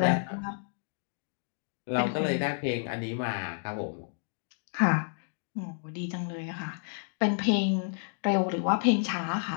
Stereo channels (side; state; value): right; silent; digital silence